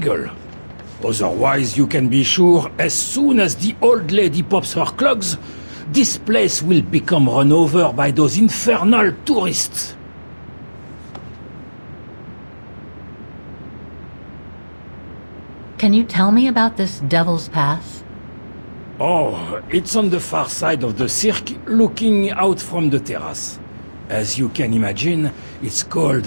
Otherwise, you can be sure as soon as the old lady pops her clogs, this place will become run over by those infernal tourists. Can you tell me about this Devil's Pass? Oh, it's on the far side of the cirque, looking out from the terrace. As you can imagine, it's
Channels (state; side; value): inverted; both; correlation -1.00